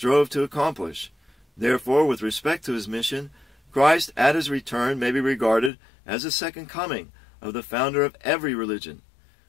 to accomplish. Therefore, with respect to his mission, Christ at his return may be regarded as the second coming of the founder of every religion.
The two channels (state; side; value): drops out; right; at 5.7 s